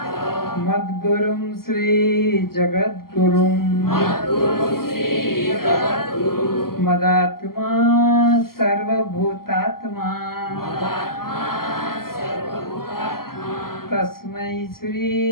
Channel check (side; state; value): right; late; 0.93 ms